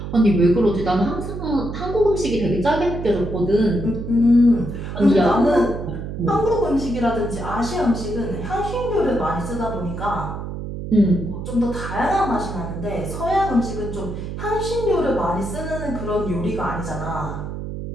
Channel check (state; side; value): noise; right; hum, 7 dB below the sound